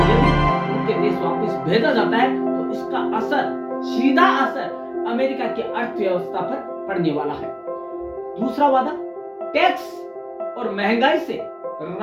यदि उनके देश वापस भेजा जाता है तो इसका असर, सीधा असर अमेरिका की अर्थव्यवस्था पर पड़ने वाला है। दूसरा वादा टैक्स और महंगाई से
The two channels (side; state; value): both; identical; correlation 1.00